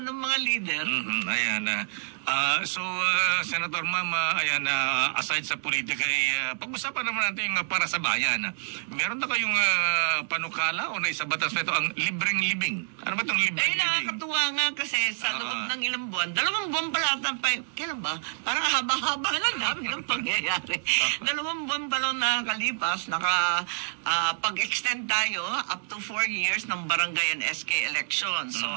ng mga leader? Ayan. Senator Ma'am, aside sa politika, pag-usapan naman natin yung para sa bayan. Meron na kayong panukala o naisabatas na ito ang libreng libing? Ano ba itong libreng libing? Nakakatuwa nga kasi sa loob ng ilang buwan, 2 buwan pala kailan ba? Parang haba-haba na namin ang pangyayari. 2 buwan pa lang nakakalipas, pag-extend tayo up to 4 years ng barangay and SK election. So,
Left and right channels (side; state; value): left; silent; 60 dB below the other